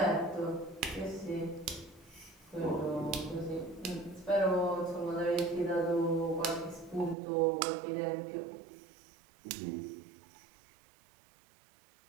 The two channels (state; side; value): drops out; left; at 7.2 s